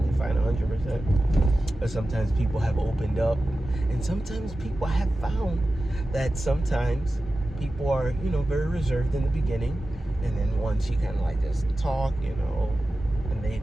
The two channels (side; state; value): both; normal; correlation 0.94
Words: fine, 100%. But sometimes people have opened up, and sometimes people have found that sometimes people are, very reserved in the beginning, and then once you kind of like just talk, and